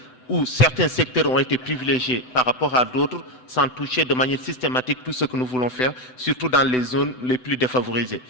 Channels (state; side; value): late; right; 7.9 ms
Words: où certains secteurs ont été privilégiés par rapport à d'autres, sans toucher de manière systématique tout ce que nous voulons faire, surtout dans les zones les plus défavorisées.